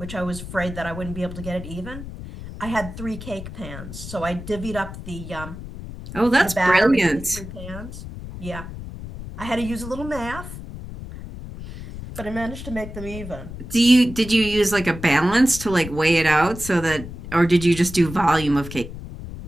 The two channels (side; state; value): left; noise; rumble, 11 dB below the sound